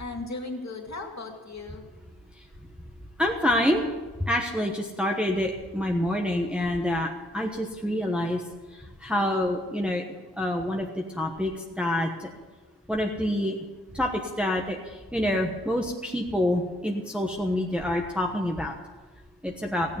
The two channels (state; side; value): normal; both; correlation 0.72